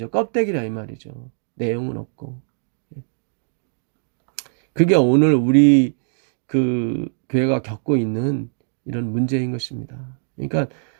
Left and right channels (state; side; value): silent; left; digital silence